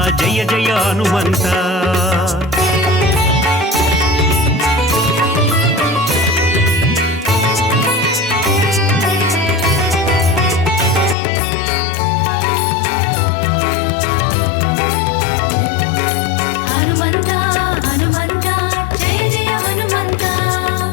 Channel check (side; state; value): right; drops out; at 11.2 s